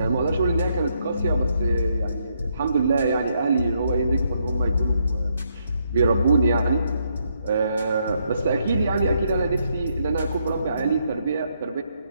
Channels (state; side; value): inverted; both; correlation -0.76